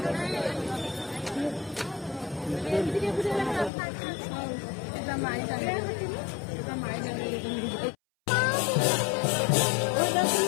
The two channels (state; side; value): drops out; right; at 3.7 s